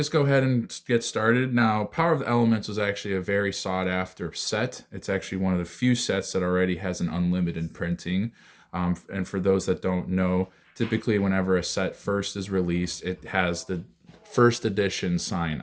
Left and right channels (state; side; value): identical; both; correlation 1.00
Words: go ahead and get started. Now, Power of the Elements was actually a very sought after set. It's actually one of the few sets that already has an unlimited printing. And for those that don't know, typically whenever a set first is released, it has the first edition sign